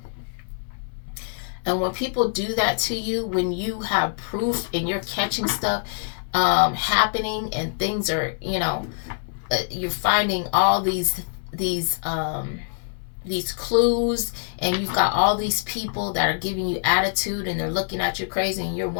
And when people do that to you, when you have proof and you're catching stuff happening, and things are, you're finding all these clues, and you've got all these people that are giving you attitude, and they're looking at you crazy, and you're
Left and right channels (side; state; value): right; silent; 62 dB below the other